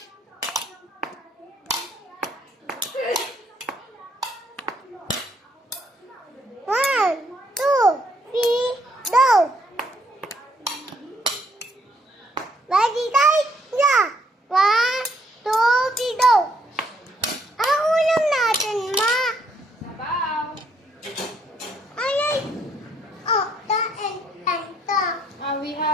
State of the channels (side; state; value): both; normal; correlation 0.69